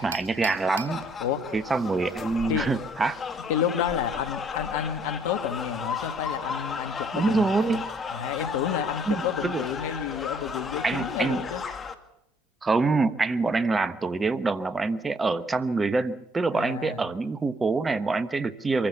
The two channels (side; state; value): both; normal; correlation 0.65